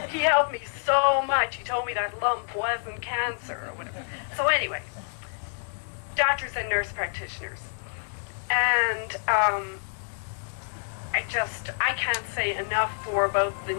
he helped me so much. He told me that lump wasn't cancer or whatever. So anyway, doctors and nurse practitioners. And I can't say enough for both the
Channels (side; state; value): right; silent; digital silence